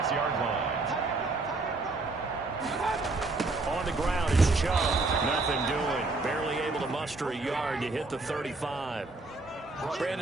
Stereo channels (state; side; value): quieter; left; 3.4 dB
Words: line. On the ground is Chubb. Nothing doing. Barely able to muster a yard to hit the 35.